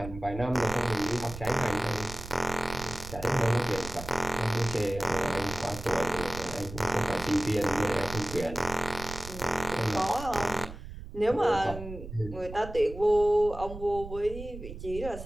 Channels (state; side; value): noise; right; rumble, 11 dB below the sound